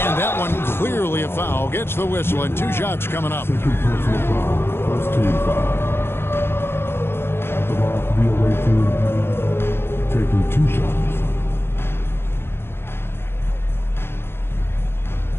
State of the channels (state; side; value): late; right; 0.11 ms